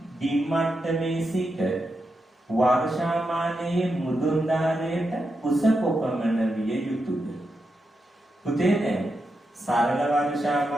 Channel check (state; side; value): normal; both; correlation 0.86